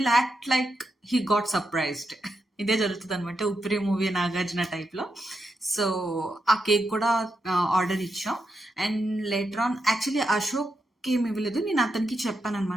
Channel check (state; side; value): normal; both; correlation 0.84